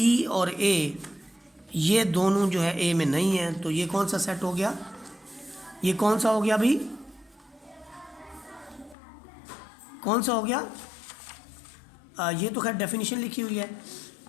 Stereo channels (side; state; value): right; drops out; at 9.0 s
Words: और ए, ये दोनों जो है ए में नहीं है, तो ये कौन सा सेट हो गया? ये कौन सा हो गया भाई? कौन सा हो गया? ये तो खैर डेफिनेशन लिखी हुई है।